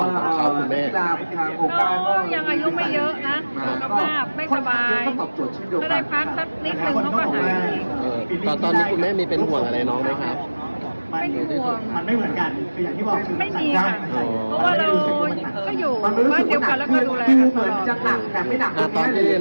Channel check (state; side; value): inverted; both; correlation -1.00